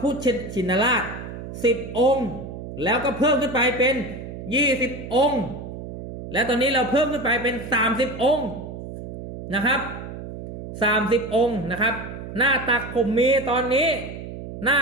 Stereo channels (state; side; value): noise; right; hum, 10 dB below the sound